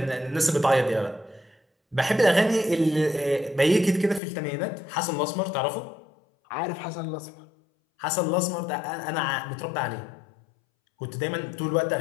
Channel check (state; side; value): drops out; right; at 4.2 s